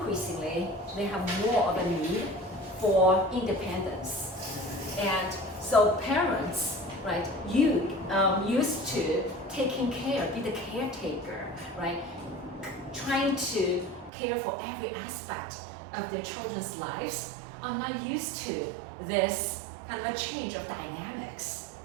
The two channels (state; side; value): drops out; left; at 14.1 s